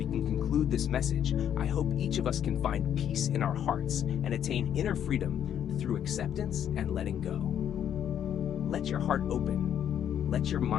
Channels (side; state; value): right; quieter; 9.6 dB